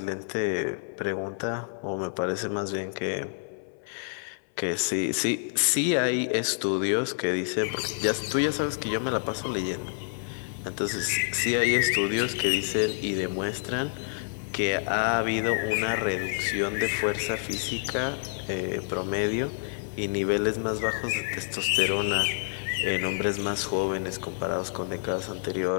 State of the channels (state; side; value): silent; right; 59 dB below the other